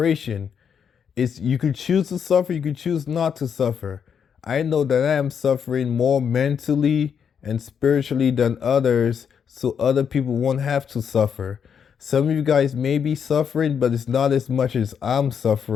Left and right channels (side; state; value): right; quieter; 7.4 dB